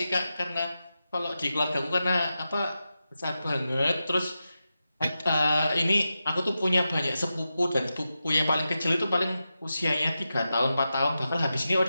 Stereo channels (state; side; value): inverted; both; correlation -0.91